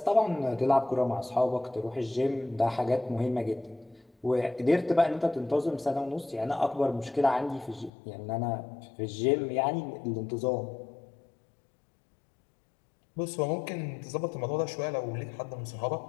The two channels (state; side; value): drops out; right; at 7.9 s